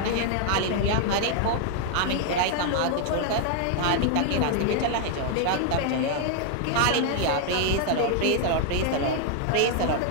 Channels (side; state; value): both; different; correlation 0.00